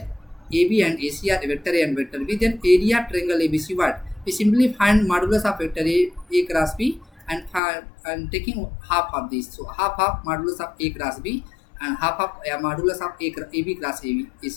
AB and AC are vector A and vector B, then area of triangle ABC what? We simply find modulus of vector A cross B and taking half of this. So half modulus of A cross B and half of modulus of AB cross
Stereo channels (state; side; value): drops out; right; at 7.6 s